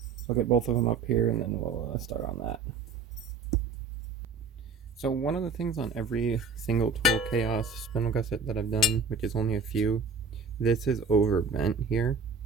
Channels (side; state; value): left; quieter; 4.4 dB